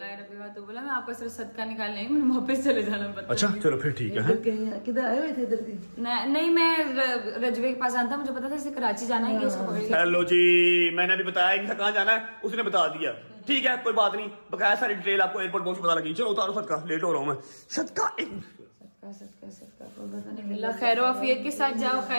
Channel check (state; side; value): inverted; both; correlation -1.00